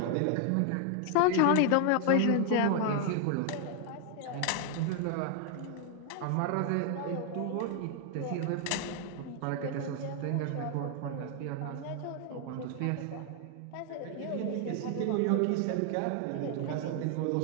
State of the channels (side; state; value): both; different; correlation 0.00